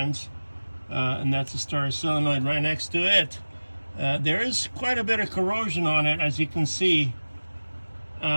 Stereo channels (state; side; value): inverted; both; correlation -1.00